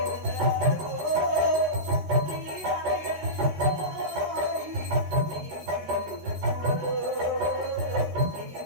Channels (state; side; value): late; left; 13 ms